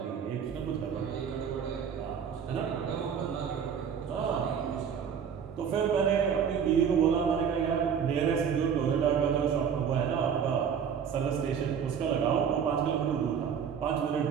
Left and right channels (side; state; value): left; quieter; 7.4 dB